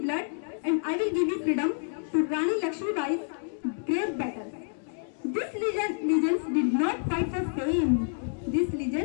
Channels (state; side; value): silent; right; digital silence